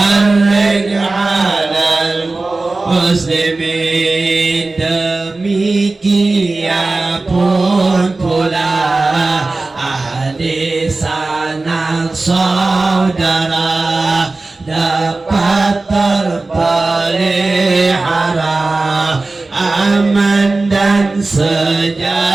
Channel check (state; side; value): quieter; left; 3.3 dB